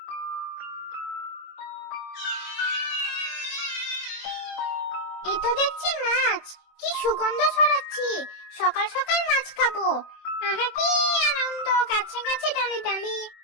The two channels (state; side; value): late; right; 24 ms